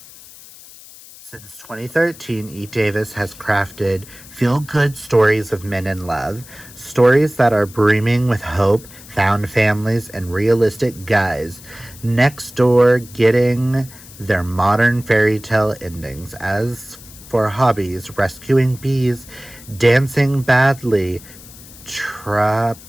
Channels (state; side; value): noise; left; hiss, 19 dB below the sound